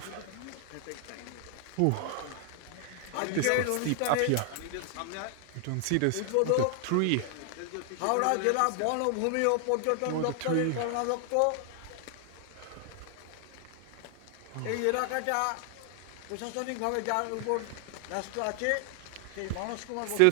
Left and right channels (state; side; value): different; both; correlation 0.00